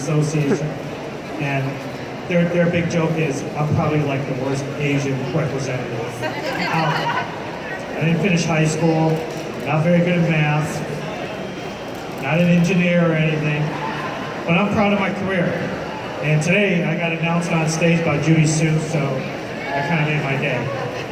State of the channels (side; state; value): both; identical; correlation 1.00